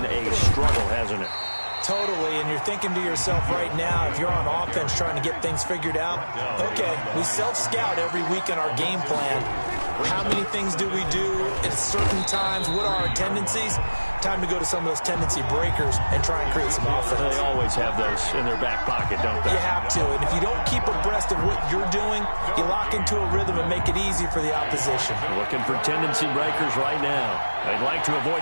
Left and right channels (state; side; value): inverted; both; correlation -1.00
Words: a struggle, hasn't it? Totally, and you're thinking to yourself right now, if you're on offense trying to get things figured out, okay, we self-scout every week in our game plan. How many things do we do at certain times? What are our tendencies? Time to go to some of those tendency breakers and try and create some offense. They always have those in their back pocket, don't they? You have to, and if you don't keep abreast of what you're doing, you lock into a rhythm and make it easy for the opposition. Looking for tendency breakers right now. They'd like to